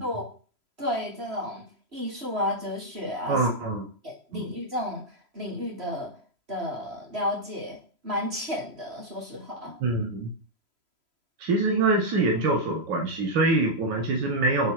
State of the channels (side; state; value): left; late; 3.0 ms